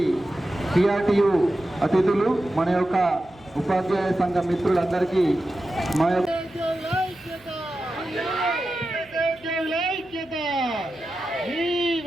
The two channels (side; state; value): right; noise; hum, 28 dB below the sound